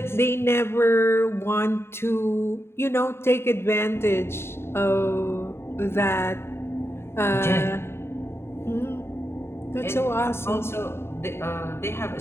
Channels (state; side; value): late; right; 0.12 ms